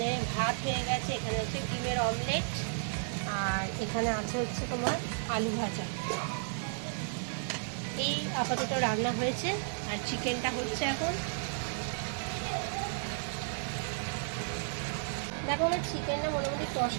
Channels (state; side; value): silent; left; 56 dB below the other